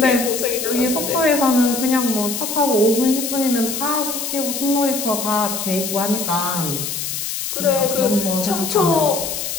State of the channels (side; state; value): left; noise; hiss, 4 dB below the sound